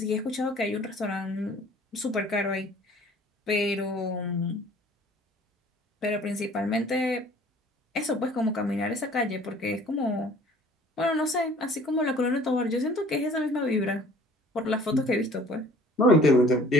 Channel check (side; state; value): both; normal; correlation 0.52